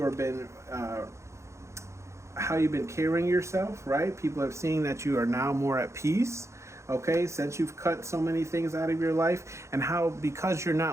have been how you've been carrying yourself, right? People are seeing that you are now more at peace, okay, since you've cut so many things out of your life, and how, because you're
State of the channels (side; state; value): left; late; 0.14 ms